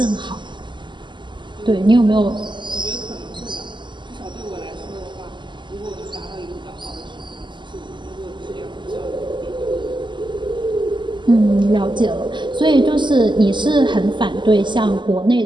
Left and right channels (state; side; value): late; left; 0.22 ms